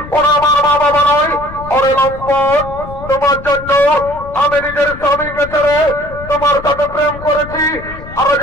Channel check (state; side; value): noise; left; rumble, 14 dB below the sound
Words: ওরা আমার মা বাবা নয় ওরে লম্পট তোমার জন্য আমি নিজের স্বামীকে ছেড়ে তোমার সাথে প্রেম করেছি আর আজ